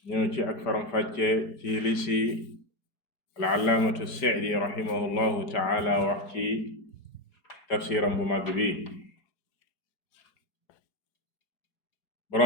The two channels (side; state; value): right; late; 4.7 ms